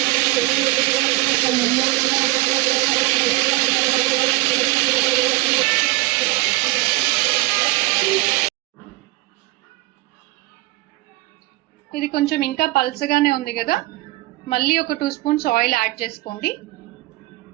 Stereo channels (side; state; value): left; quieter; 20.6 dB